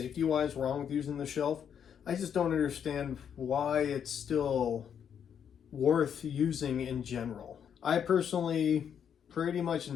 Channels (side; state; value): right; quieter; 8.2 dB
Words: wrong with using the shelf. I just don't understand why it's still worth using in general. I personally pretty much